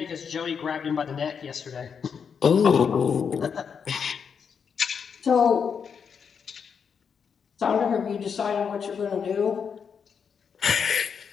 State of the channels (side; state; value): right; quieter; 6.6 dB